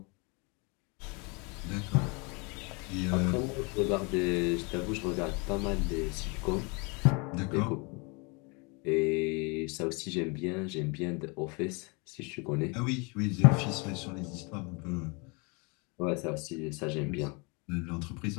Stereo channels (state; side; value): quieter; right; 30.3 dB